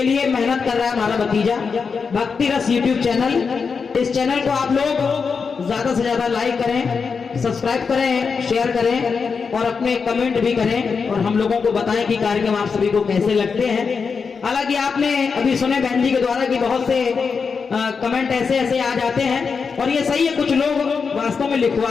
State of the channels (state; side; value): quieter; right; 5.4 dB